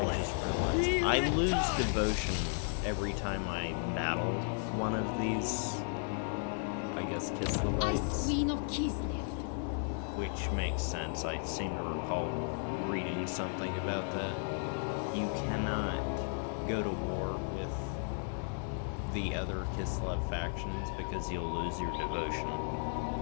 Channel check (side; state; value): right; silent; 55 dB below the other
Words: just realized. I lose devotion every time I battle one of these, I guess, Ice Kislevites. Queen of Kislev. Which makes sense. I seem to recall reading something about that. You cannot go to war with the other Kislev factions because you'll lose your devotion,